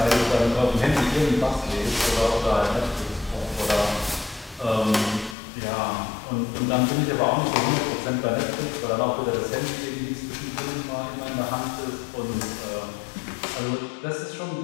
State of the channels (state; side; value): drops out; right; at 5.4 s